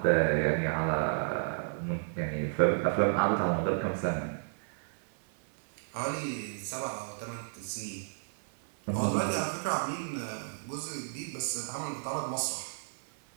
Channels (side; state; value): left; silent; digital silence